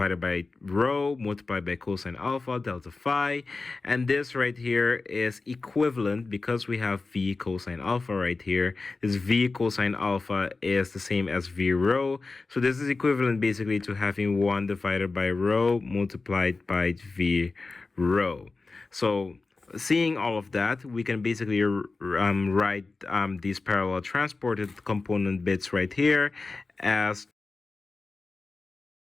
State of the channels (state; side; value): quieter; right; 3.8 dB